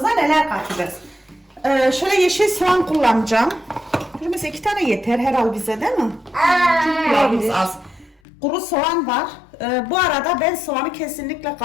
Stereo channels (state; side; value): drops out; right; at 8.2 s